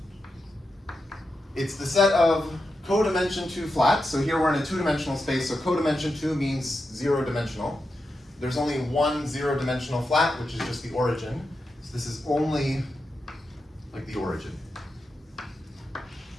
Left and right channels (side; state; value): both; normal; correlation 0.88